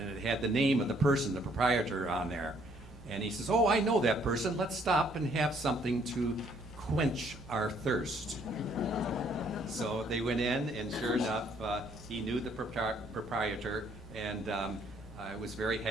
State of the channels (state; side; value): normal; both; correlation 0.65